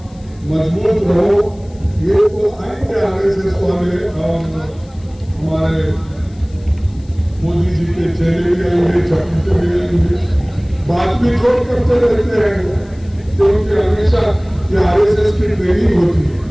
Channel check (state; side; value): noise; left; hiss, 30 dB below the sound